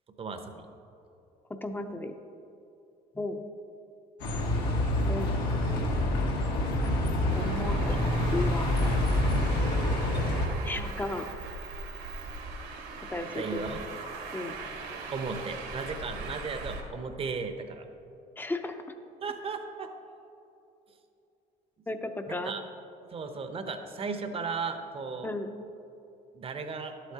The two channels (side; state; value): both; normal; correlation 0.52